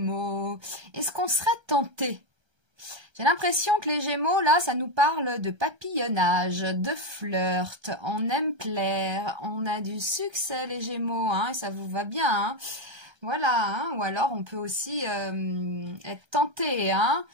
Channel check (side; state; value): left; late; 1.3 ms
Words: est-ce qu'on serait tenté? J'ai l'impression que les Gémeaux, là, ça nous parle de papillonnage, de flirt, on aime plaire, on a du succès, les Gémeaux, hein, et ça vous va bien, hein. Voilà, hein, ou alors on peut aussi être tenté, hein.